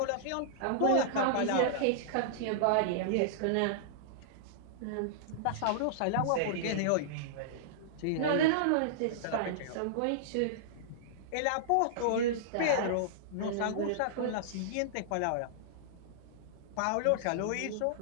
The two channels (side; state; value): both; different; correlation -0.02